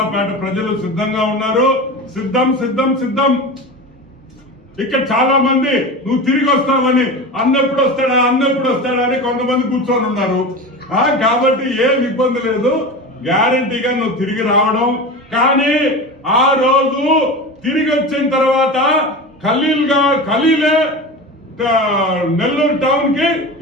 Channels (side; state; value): both; normal; correlation 0.28